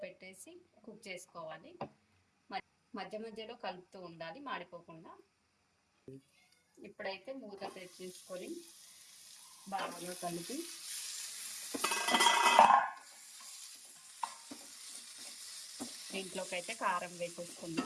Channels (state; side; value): identical; both; correlation 1.00